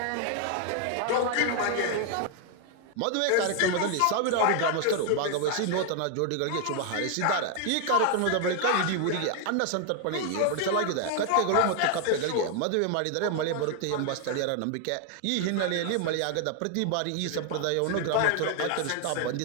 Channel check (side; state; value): both; different; correlation 0.00